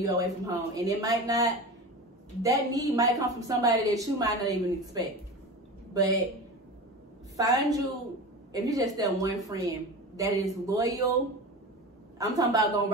away from home. And that need might come from somebody that you might not even expect. But if you just that one friend that is loyal, I'm talking about gonna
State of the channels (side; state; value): both; normal; correlation 0.30